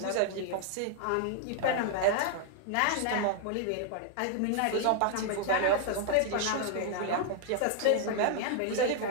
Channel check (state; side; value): different; both; correlation 0.00